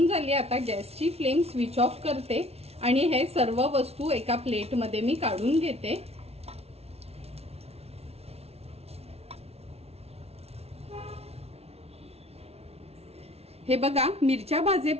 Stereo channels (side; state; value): left; late; 0.30 ms